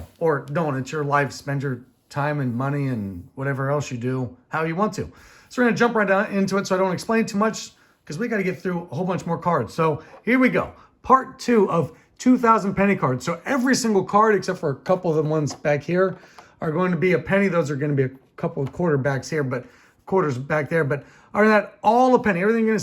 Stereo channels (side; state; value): both; identical; correlation 1.00